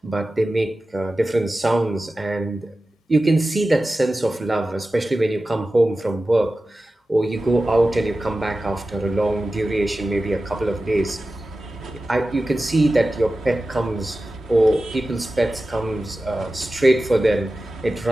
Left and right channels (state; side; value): normal; both; correlation 0.95